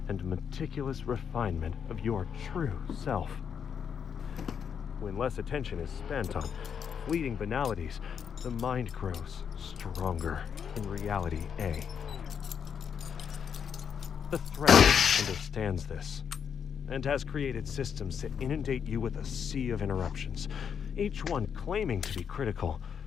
and meticulous refinement of your true self. When less attention is spent on fleeting banalities, the mind grows stronger in reality A. The threat understands this, and has created systems to inundate you with a sea of interruptions, each one claiming to be critical,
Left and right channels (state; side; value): quieter; right; 7.4 dB